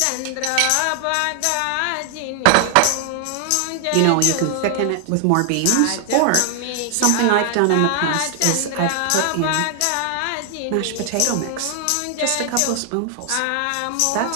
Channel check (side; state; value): both; different; correlation 0.00